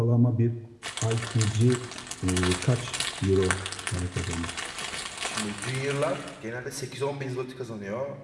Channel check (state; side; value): identical; both; correlation 1.00